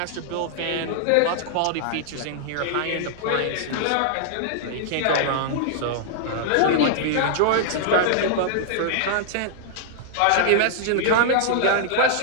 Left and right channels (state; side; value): different; both; correlation -0.01